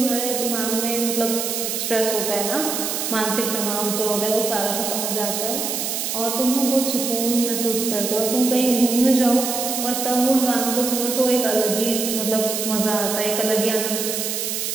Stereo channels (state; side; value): noise; right; hiss, 2 dB below the sound